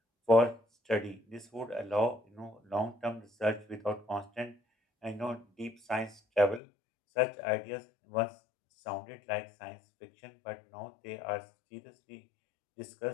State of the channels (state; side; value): drops out; right; at 6.6 s